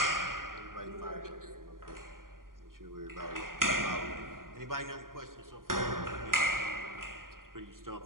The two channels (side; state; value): left; late; 0.91 ms